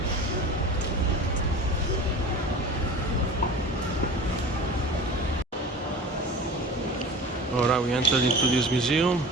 Alright, we entered into this museum.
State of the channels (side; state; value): both; normal; correlation 0.37